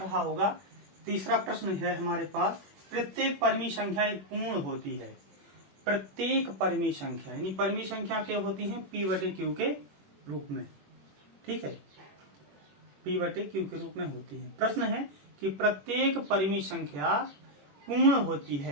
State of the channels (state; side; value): late; left; 21 ms